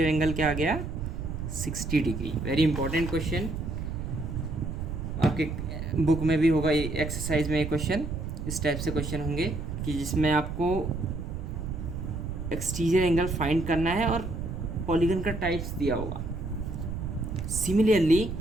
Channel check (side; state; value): right; noise; rumble, 6 dB below the sound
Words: एंगल क्या आ गया 60 डिग्री। वेरी इंपॉर्टेंट क्वेश्चन, आपके बुक में भी होगा, एक्सरसाइज में क्वेश्चन इस टाइप से क्वेश्चन होंगे कि जिसमें आपको एक्सटीरियर एंगल फाइंड करना है और पॉलीगन का टाइप्स दिया होगा। Similarly